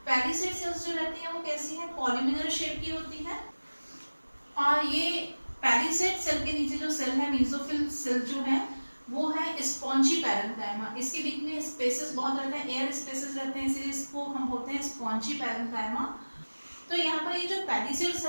पैलिसेड सेल्स जो रहती है वो कैसी है? पॉलीमिनल शेप की होती है। और ये पैलिसेड सेल के नीचे जो सेल है, मीसोफिल सेल जो है, वो है स्पॉन्जी पैरेन्काइमा। इसके बीच में स्पेसेस बहुत रहते हैं, एयर स्पेसेस रहते हैं, इसलिए इसको हम बोलते हैं स्पॉन्जी पैरेन्काइमा। तो यहाँ पर ये जो पैलिसेड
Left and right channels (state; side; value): inverted; both; correlation -1.00